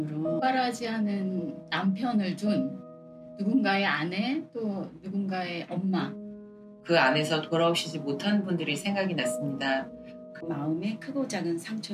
오빠라지 않은 남편을 둔 누군가의 아내 또 누군가의 엄마, 그 안에서 돌아오시지 못하는 분들이 생각이 났습니다. 그 마음에 크고 작은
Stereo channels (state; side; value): identical; both; correlation 1.00